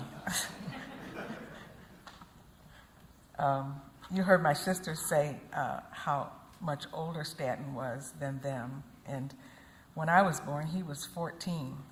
You heard my sister say how much older Stanton was than them. And when I was born, he was 14,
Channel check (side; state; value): both; identical; correlation 1.00